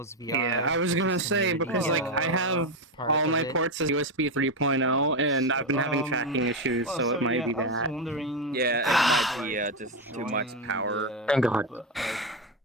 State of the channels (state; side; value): normal; both; correlation 0.09